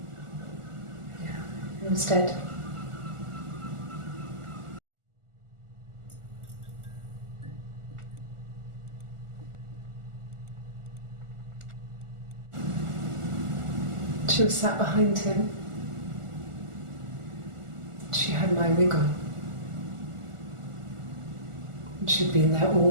He was dead. She was sat behind him. She had my wig on. And she'd been there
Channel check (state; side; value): late; left; 1.4 ms